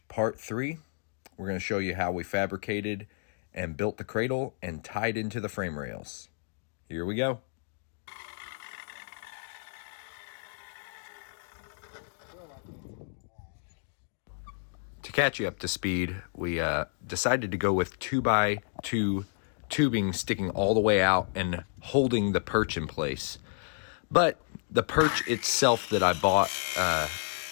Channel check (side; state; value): right; silent; digital silence